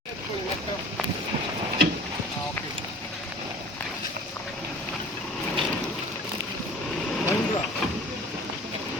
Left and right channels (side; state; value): both; normal; correlation 0.45